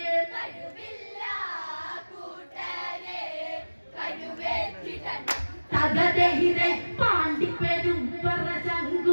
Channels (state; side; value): inverted; both; correlation -1.00